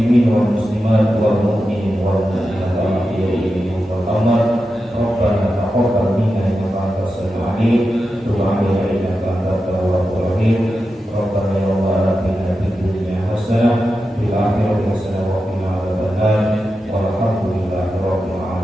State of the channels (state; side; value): normal; both; correlation 0.90